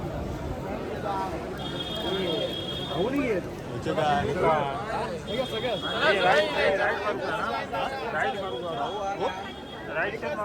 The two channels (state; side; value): identical; both; correlation 1.00